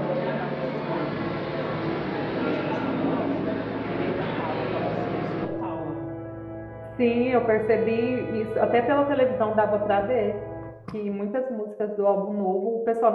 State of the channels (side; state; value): both; identical; correlation 1.00